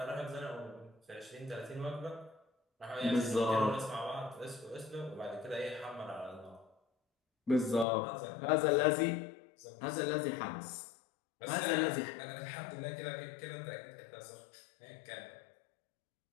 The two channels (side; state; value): right; drops out; at 7.9 s